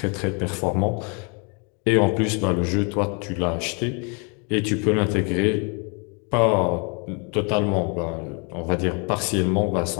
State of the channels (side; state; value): right; quieter; 35.3 dB